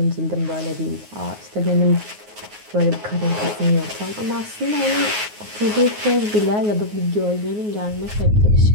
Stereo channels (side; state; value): left; late; 9.5 ms